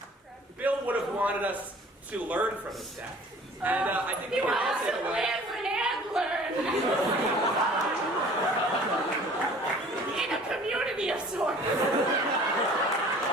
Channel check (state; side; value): normal; both; correlation 0.49